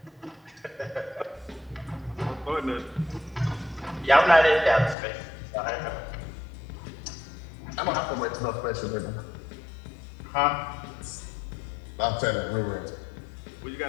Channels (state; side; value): drops out; right; at 5.0 s